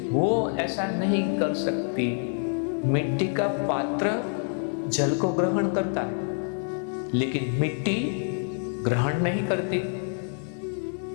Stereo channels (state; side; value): silent; right; 60 dB below the other